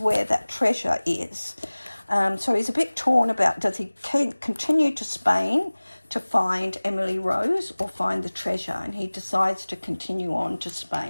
where that treasure is. So he's a bit torn about, does he continue to Spain to find Emily Rose or find the treasure? And he decides to continue on to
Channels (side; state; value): both; inverted; correlation -1.00